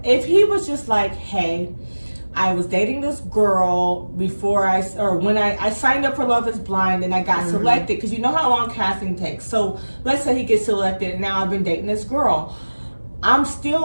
if he was just like, hey, I was dating this girl when I signed up for Love is Blind and I got selected, because you know how long casting takes. So let's say he gets selected and now I've been dating this girl. I'm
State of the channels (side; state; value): both; inverted; correlation -1.00